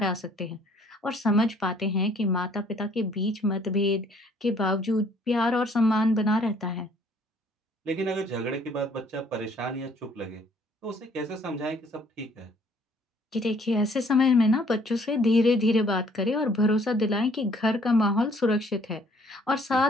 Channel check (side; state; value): both; normal; correlation 0.61